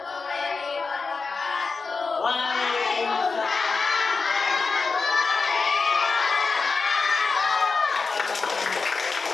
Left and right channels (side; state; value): right; quieter; 4.5 dB